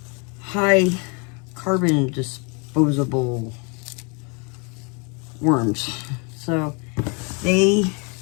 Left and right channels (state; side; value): quieter; right; 33.4 dB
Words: high carbon disposable worms. So they